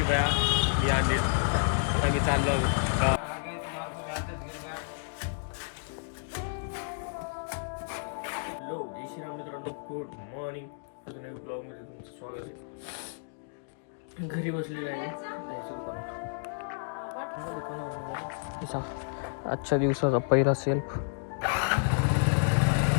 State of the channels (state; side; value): silent; right; digital silence